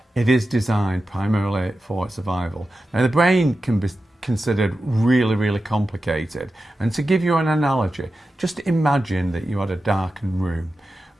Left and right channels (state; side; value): normal; both; correlation 0.92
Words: it is designed primarily for survival. Now, the brain can be considered really complicated. And to give you an analogy, just imagine that you had a darkened room